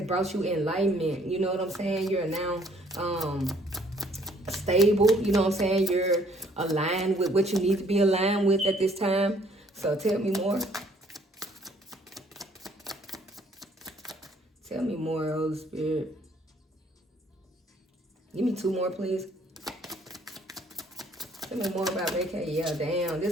brought you enlightenment. You know what I'm saying? You're now stable. You know what I'm saying? You're aligned with what you need to be aligned with at this time. So tell me more. Tell me more, Holy Spirit. Give me 2 more, please. Tell me more about vacation. Yeah, damn. This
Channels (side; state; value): both; normal; correlation 0.62